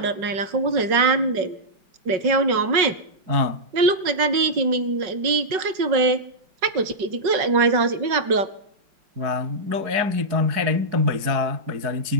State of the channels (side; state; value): left; late; 5.4 ms